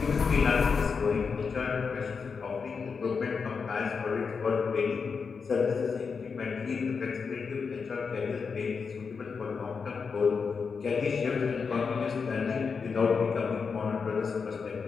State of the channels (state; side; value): quieter; right; 5.5 dB